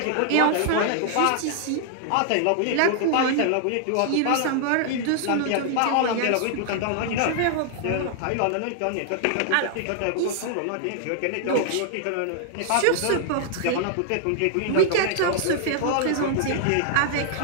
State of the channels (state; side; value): different; both; correlation -0.01